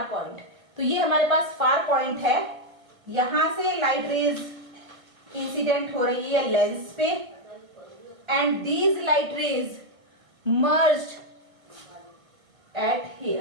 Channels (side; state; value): left; late; 1.6 ms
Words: point, तो ये हमारे पास फार पॉइंट है, यहां से लाइट रेज इंसिडेंट हो रही है लेंस पे, and these light rays merged eight